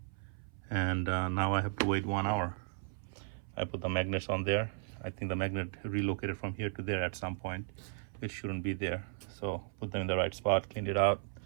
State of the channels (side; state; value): left; silent; 54 dB below the other